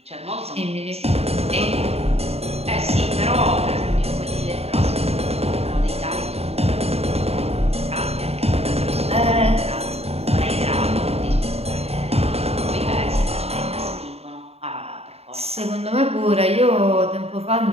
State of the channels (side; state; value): left; late; 0.30 ms